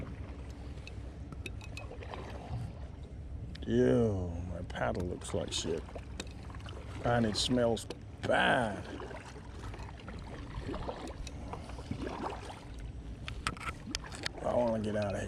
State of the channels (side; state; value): both; identical; correlation 1.00